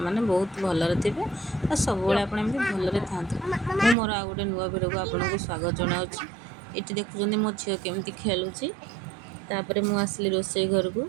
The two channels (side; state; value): left; drops out; at 4.0 s